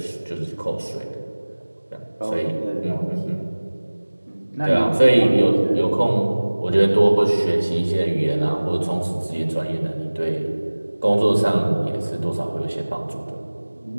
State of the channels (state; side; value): inverted; both; correlation -1.00